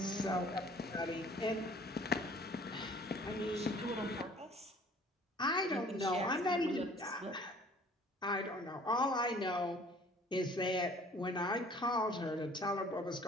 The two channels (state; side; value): normal; both; correlation 0.53